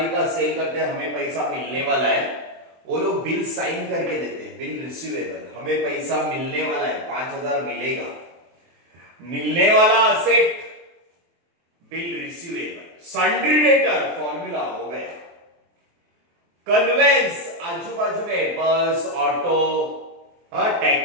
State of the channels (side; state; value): left; late; 23 ms